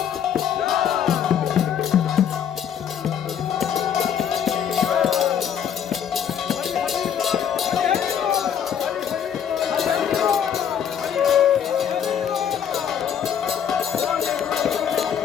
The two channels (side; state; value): right; quieter; 8.6 dB